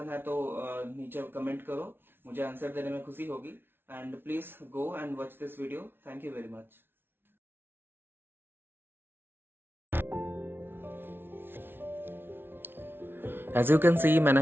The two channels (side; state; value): left; late; 0.11 ms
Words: है तो नीचे कमेंट करो, मुझे आंसर देने में खुशी होगी। And please go and watch this video. Thank you very much. As you can see,